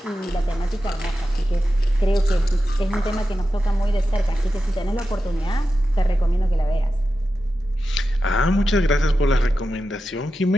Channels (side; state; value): both; normal; correlation 0.91